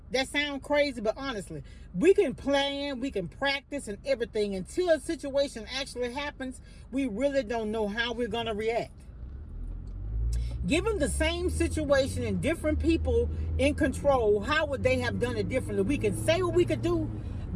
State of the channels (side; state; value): both; identical; correlation 1.00